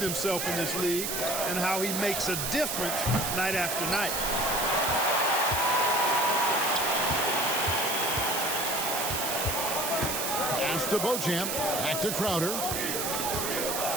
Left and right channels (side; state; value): right; noise; hiss, 1 dB below the sound